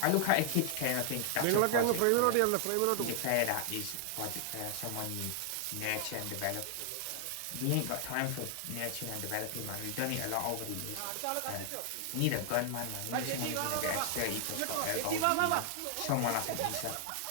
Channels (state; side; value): different; both; correlation 0.00